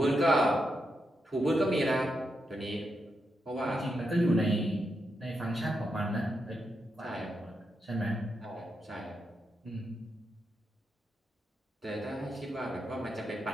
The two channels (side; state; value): both; normal; correlation 0.84